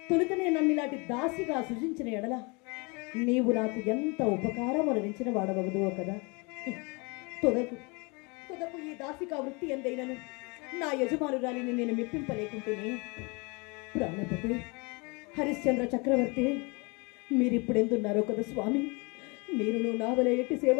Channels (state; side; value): quieter; right; 29.5 dB